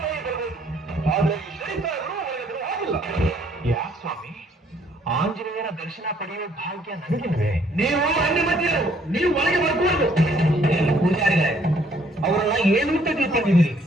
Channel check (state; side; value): normal; both; correlation 0.64